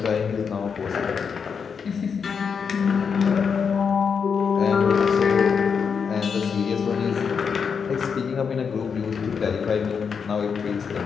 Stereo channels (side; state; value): right; quieter; 6.3 dB